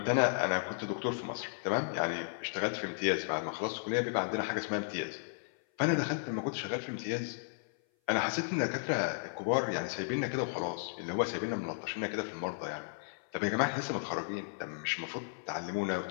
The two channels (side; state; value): right; silent; 55 dB below the other